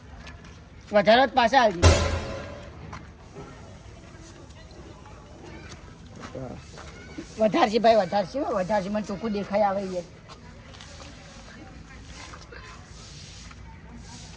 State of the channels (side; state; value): both; identical; correlation 1.00